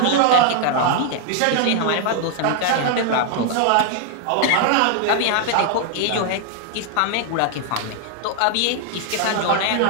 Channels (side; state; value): both; different; correlation 0.00